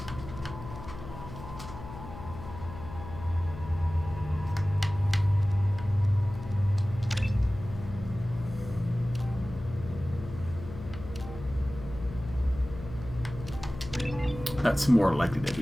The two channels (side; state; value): left; noise; hum, 12 dB below the sound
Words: That's more likely to